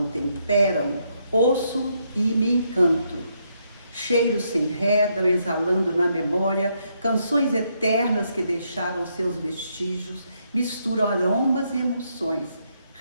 temperam, ouço e me encanto. Cheiros se enredam, exalando na memória canções eternas que deixaram seus vestígios, misturam aromas e emoções,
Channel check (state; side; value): inverted; both; correlation -0.76